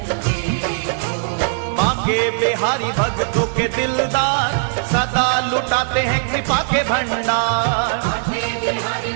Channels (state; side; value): silent; left; digital silence